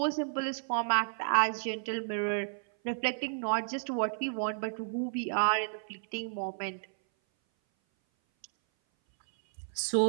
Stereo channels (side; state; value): left; silent; 56 dB below the other